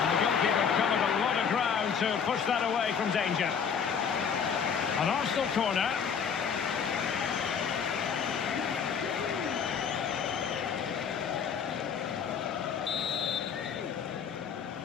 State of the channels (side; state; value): right; quieter; 6.9 dB